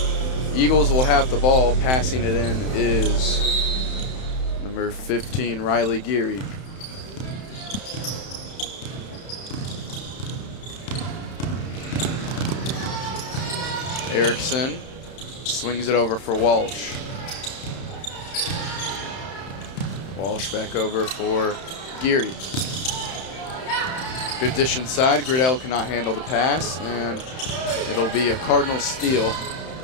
Eagles will have the ball. Passing it in is number 15, Riley Geary. Erickson swings it over for Walsh. Walsh back over for Geary. Good dish inside. Gridell cannot handle the pass, and it'll be a Cardinal steal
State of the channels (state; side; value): late; right; 31 ms